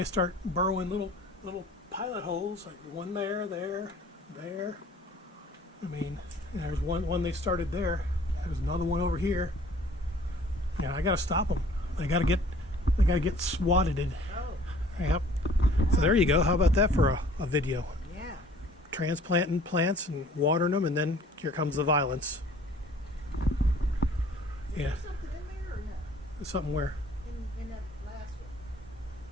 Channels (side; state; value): both; normal; correlation 0.53